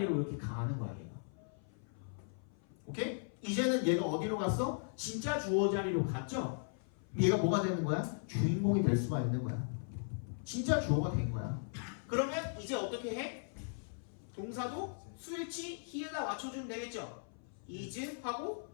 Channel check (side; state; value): right; silent; 53 dB below the other